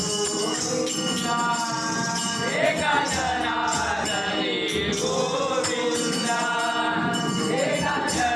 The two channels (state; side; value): identical; both; correlation 1.00